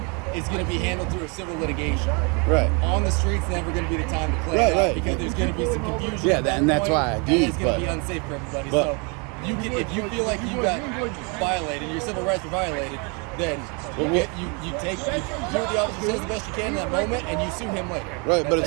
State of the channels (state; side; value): quieter; left; 33.2 dB